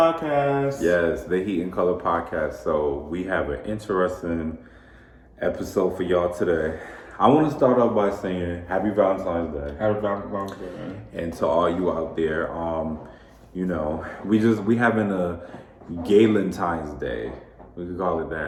Yes, the Heat and Color podcast. So we have an interesting episode for y'all today. I want to start off by saying Happy Valentine's Day. Happy Valentine's Day. And to all you out there, we having a Galentine's Day. We could call it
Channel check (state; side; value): identical; both; correlation 1.00